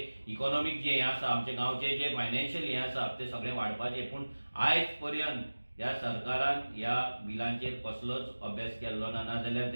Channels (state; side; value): inverted; both; correlation -1.00